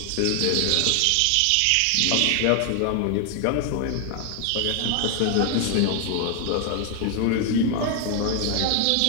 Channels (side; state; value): both; different; correlation 0.00